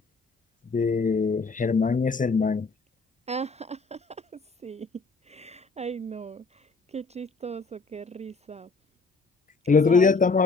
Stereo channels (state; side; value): quieter; right; 4.0 dB